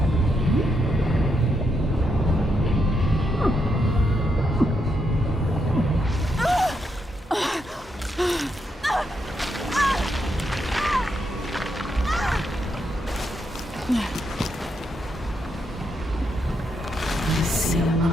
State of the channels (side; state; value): both; normal; correlation 0.80